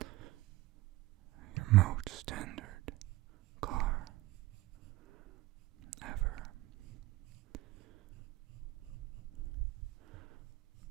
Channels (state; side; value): quieter; left; 18.5 dB